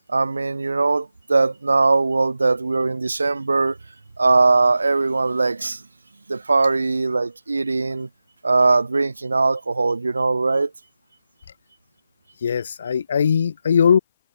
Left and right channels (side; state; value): both; inverted; correlation -0.92